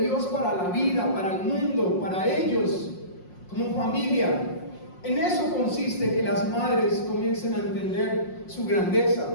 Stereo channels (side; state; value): right; late; 5.6 ms